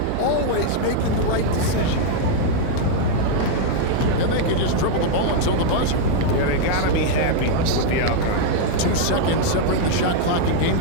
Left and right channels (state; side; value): different; both; correlation 0.00